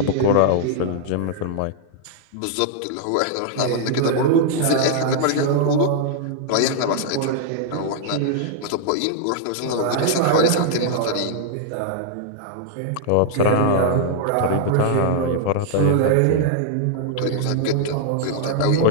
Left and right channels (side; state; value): both; different; correlation -0.01